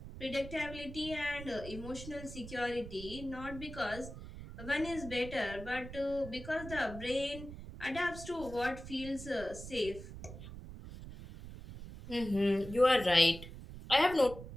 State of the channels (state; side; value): noise; right; rumble, 12 dB below the sound